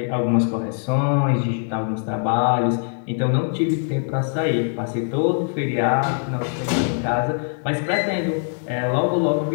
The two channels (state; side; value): silent; right; digital silence